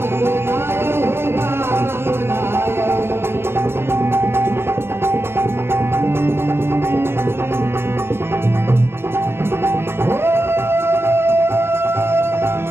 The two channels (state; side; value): late; left; 0.12 ms